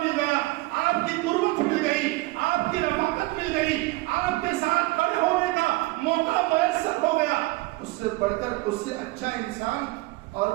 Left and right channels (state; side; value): quieter; left; 20.9 dB